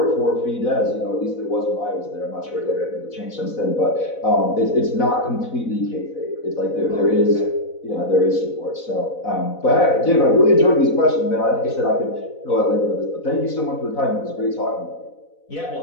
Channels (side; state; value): right; late; 4.0 ms